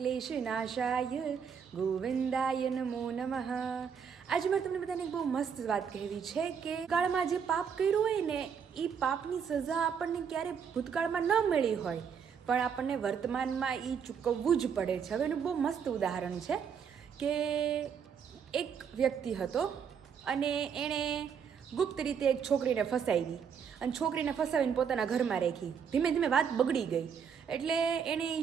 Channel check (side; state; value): left; quieter; 7.1 dB